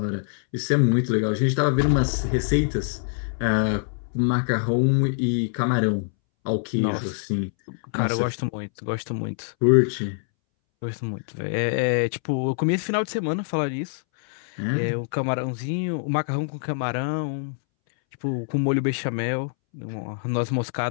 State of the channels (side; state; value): right; silent; 62 dB below the other